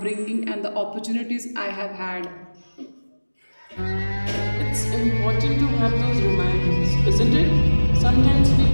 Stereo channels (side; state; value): both; inverted; correlation -1.00